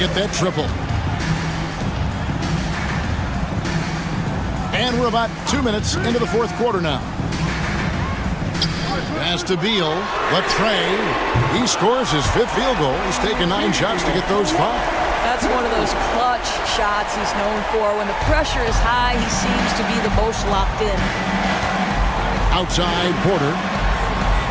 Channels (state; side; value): identical; both; correlation 1.00